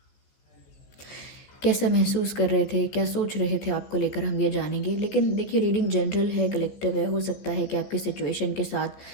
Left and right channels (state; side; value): late; right; 15 ms